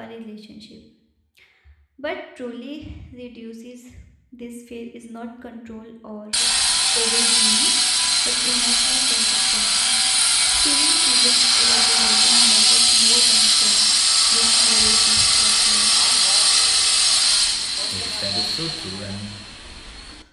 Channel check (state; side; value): identical; both; correlation 1.00